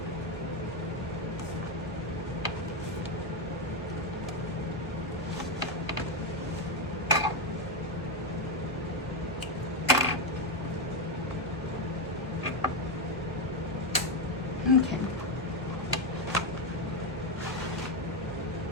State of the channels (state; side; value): normal; both; correlation 0.06